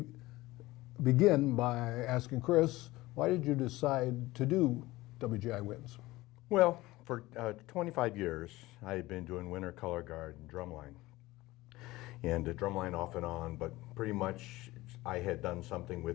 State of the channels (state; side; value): quieter; right; 18.9 dB